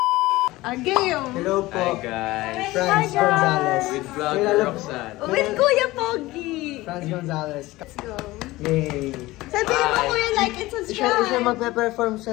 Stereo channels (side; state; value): right; quieter; 18.9 dB